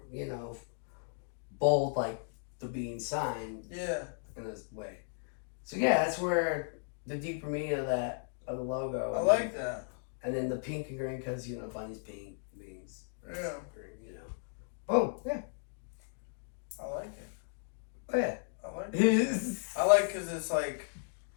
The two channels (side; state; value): right; silent; digital silence